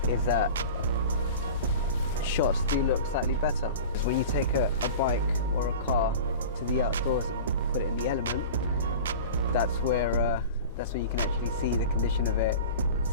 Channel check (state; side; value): inverted; both; correlation -0.35